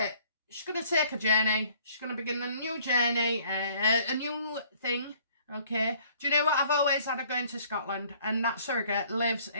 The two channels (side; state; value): both; inverted; correlation -0.58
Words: it. She's going to take a journey. She's going to begin a new journey, a new thing, okay? Do you know what? I've always had her going to Scotland, and that surrogate lives